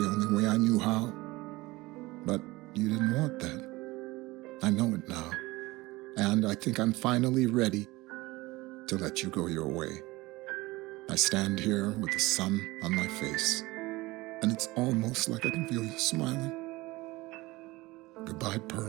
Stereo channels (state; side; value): quieter; left; 20.8 dB